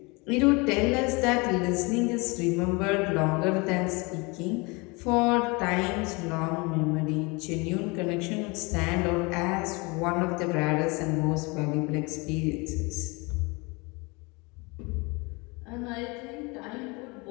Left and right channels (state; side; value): quieter; right; 27.3 dB